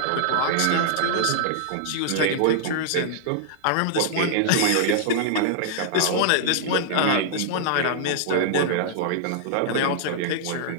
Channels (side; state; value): both; different; correlation -0.01